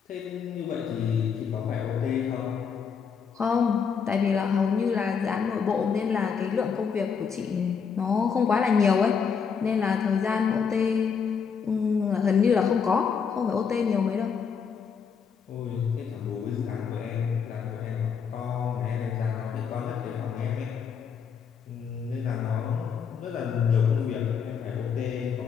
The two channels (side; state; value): right; quieter; 6.4 dB